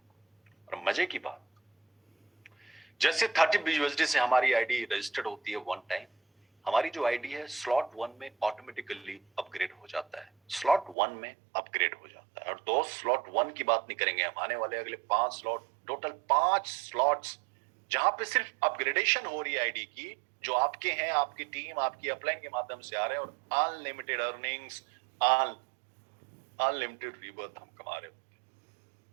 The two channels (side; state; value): left; drops out; at 11.0 s